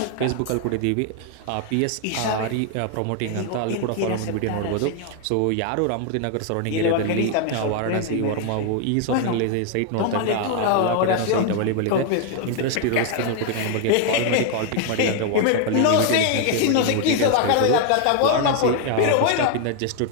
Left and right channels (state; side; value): different; both; correlation 0.01